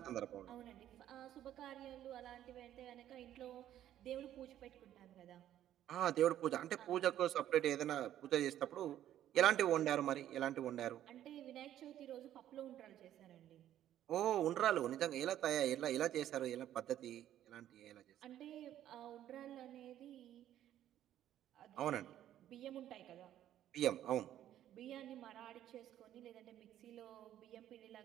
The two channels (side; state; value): left; quieter; 11.8 dB